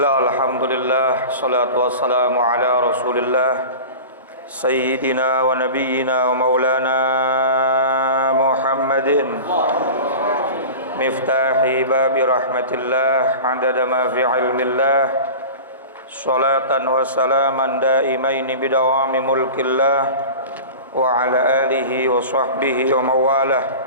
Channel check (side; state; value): both; inverted; correlation -0.33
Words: alhamdulillah, salatu wassalamu ala rasulillah Sayyidina wa nabiyyina wa maulana Muhammadin Miftahi babi rahmatillah Adada ma fi ilmillah Salatan wa salaman daimaini bidawami mulkillah Wa ala alihi wa sahbihi wa mawalah